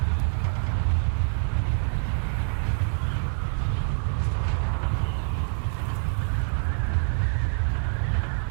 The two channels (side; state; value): left; silent; digital silence